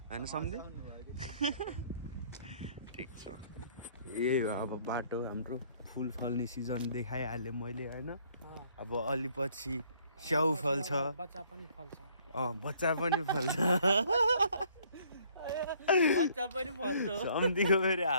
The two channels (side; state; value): both; inverted; correlation -0.62